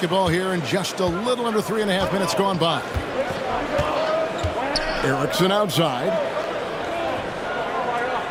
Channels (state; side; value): identical; both; correlation 1.00